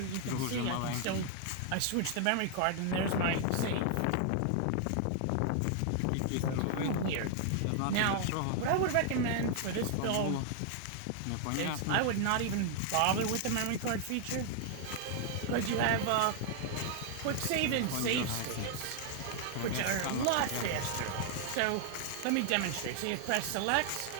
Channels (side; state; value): both; different; correlation 0.00